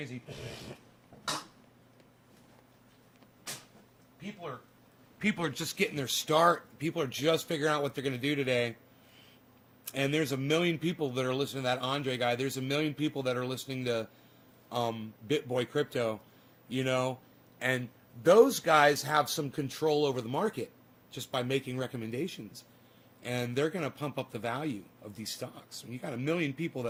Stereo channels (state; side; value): identical; both; correlation 1.00